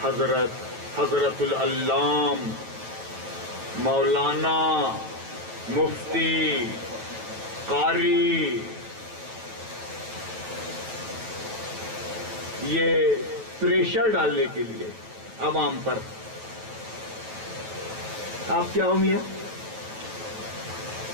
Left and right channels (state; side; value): late; left; 9.2 ms